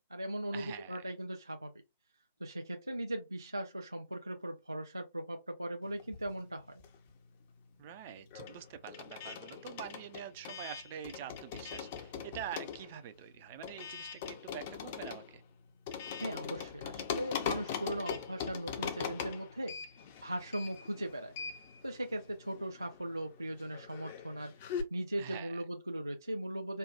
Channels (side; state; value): both; inverted; correlation -0.69